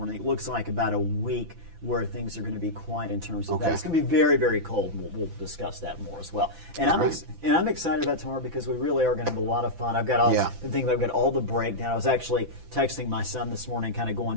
It looks like about a week where things are going to be quiet in terms of Okay. that. It's going to be very, very cold. We'll discuss that more as well. And I'm excited about tomorrow because we really are going to have a lot of fun. I've got all I've got all the breakdown. I was actually texting my son this morning, kind of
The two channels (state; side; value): late; left; 5.9 ms